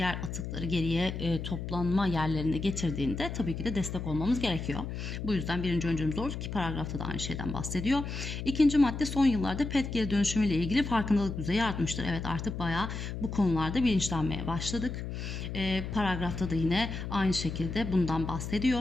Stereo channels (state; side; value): noise; left; hum, 6 dB below the sound